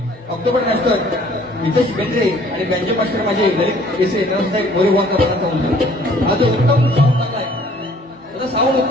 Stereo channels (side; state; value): both; normal; correlation 0.56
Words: October master, Nitesh Bendre आणि बँजो मास्टर माझे ललित केसे, त्यांना सुद्धा एक मोरेबाचा मानाचा मुद्रा. हा जो उत्तम साऊंड चांगला आहे, त्याचा साऊंड